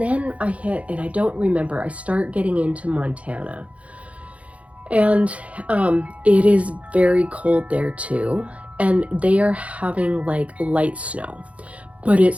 and I don't remember, I start getting into Montana. And it is very cold there too. And they are having like light snow, but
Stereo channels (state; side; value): late; left; 0.065 ms